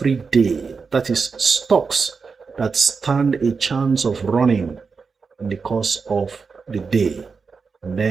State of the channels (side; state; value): left; quieter; 5.1 dB